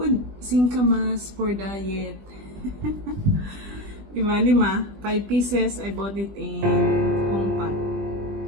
singkamas for diet. Diba, 5 pieces. I bought it in Hongpat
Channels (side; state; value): left; late; 20 ms